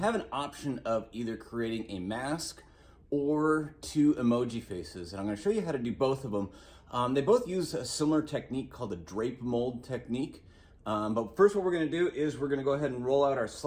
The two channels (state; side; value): identical; both; correlation 1.00